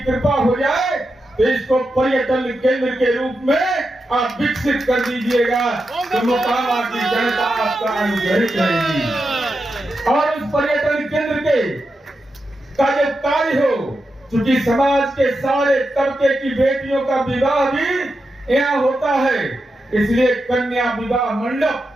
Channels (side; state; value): both; normal; correlation 0.88